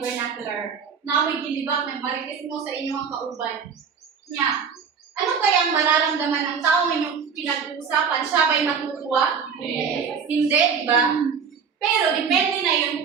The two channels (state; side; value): quieter; left; 6.4 dB